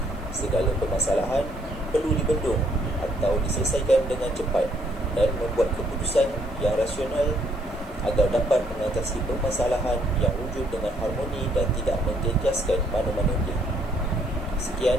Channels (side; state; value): right; noise; hiss, 29 dB below the sound